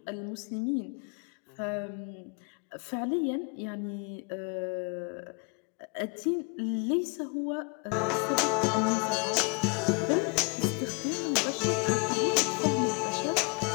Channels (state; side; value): quieter; right; 33.8 dB